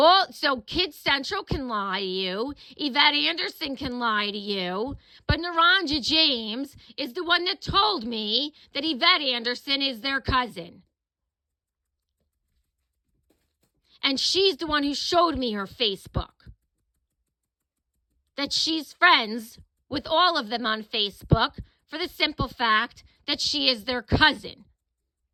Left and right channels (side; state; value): both; identical; correlation 1.00